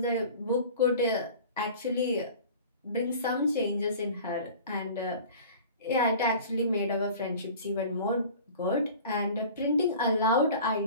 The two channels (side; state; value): both; inverted; correlation -0.42